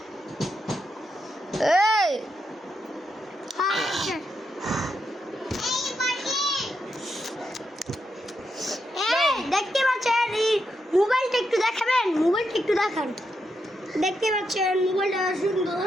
এই দেখতে পাচ্ছেন মোবাইলটা একটু দেখাবেন, মোবাইলটা একটু দেখান। দেখতে পাচ্ছেন মোবাইলটা সুন্দর,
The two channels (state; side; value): normal; both; correlation 0.83